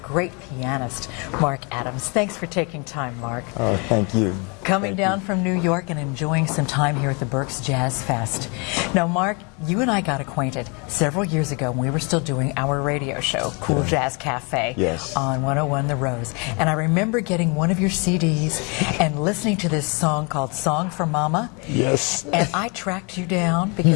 pianist, Mark Adams. Thanks for taking time, Mark. Oh, thank you. Coming down from New York and enjoying some time here at the Berks Jazz Fest. Now, Mark, you and I got acquainted several years ago when we were still doing our radio show, Cool Jazz Café, yes, on 101 The Rose. And I remember getting one of your CDs and listening to this song called Song for Mama. Yes. And I tracked you down because...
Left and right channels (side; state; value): right; quieter; 32.1 dB